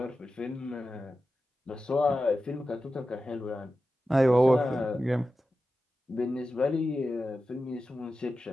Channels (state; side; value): normal; both; correlation 0.92